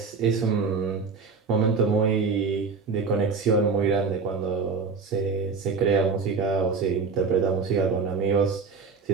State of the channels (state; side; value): quieter; left; 4.9 dB